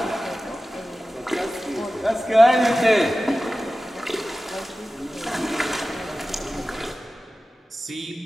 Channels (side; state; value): both; normal; correlation 0.95